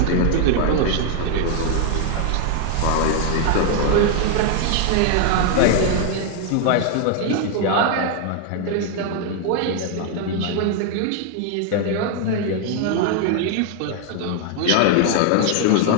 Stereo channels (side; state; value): both; different; correlation 0.00